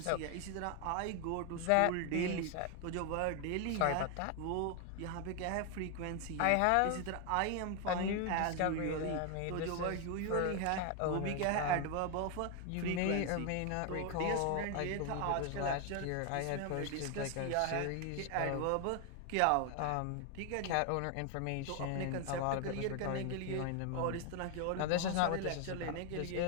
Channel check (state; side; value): different; both; correlation 0.01